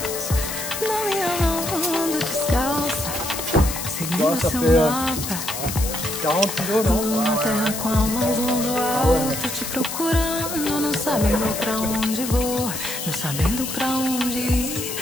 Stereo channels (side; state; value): left; noise; hiss, 6 dB below the sound